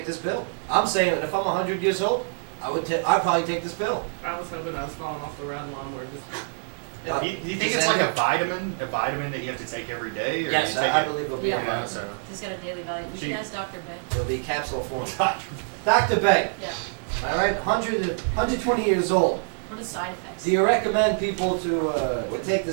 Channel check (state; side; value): silent; left; 59 dB below the other